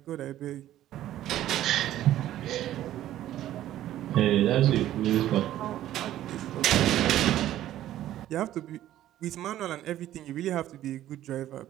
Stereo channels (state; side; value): quieter; left; 13.0 dB